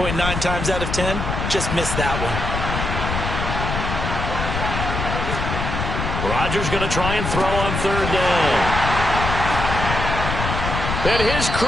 times out of 10? Just missed that one. Rodgers going to try and throw on third down. And his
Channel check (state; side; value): noise; left; rumble, 3 dB below the sound